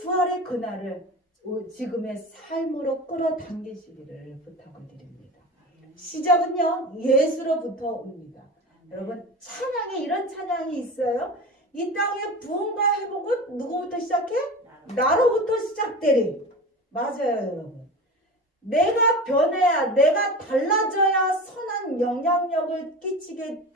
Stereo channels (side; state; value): both; normal; correlation 0.31